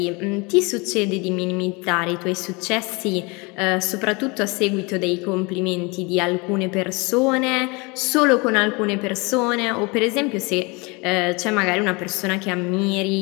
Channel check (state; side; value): quieter; right; 27.7 dB